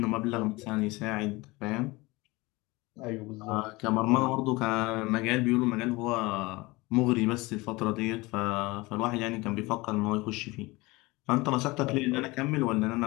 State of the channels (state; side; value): quieter; right; 22.6 dB